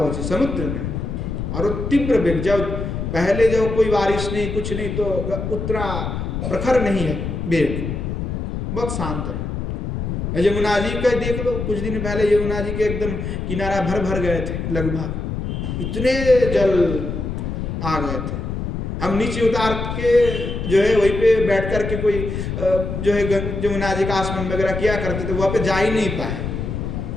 समुद्र में। और वो तीव्र वेग, जब पहले जब कोई बारिश नहीं कुछ नहीं तो उतना प्रखर नहीं है वेग, बहुत शांत है। यमुना जी का देख लो, कुछ दिन पहले यमुना जी के एकदम किनारा भर गए थे, लगभग इतने जल आ गए थे। हम नीचे उतार के जो है वहीं पे बैठ कर के कोई जो है यमुना जी का आसमान वगैरह किया करते थे, वहाँ पे जा ही नहीं पाए।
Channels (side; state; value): left; noise; rumble, 4 dB below the sound